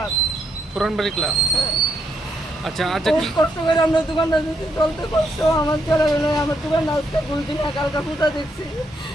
পুরানবাড়ি ক্লাব আচ্ছা আচ্ছা কি কষ্ট করে আমরা দোকানটা দিতে চলতে কষ্ট আমার চলে গেল আমার দোকানটা আজকে দুদিন একালকা ফুটা দেখছি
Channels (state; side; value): normal; both; correlation 0.77